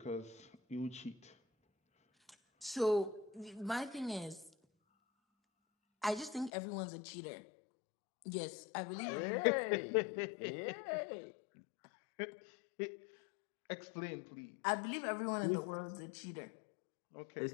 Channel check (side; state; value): right; drops out; at 6.5 s